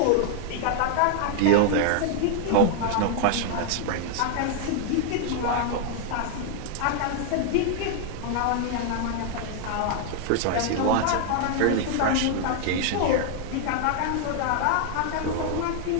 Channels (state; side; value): different; both; correlation 0.00